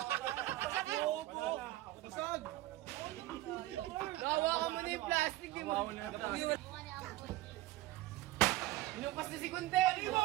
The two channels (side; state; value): left; quieter; 16.7 dB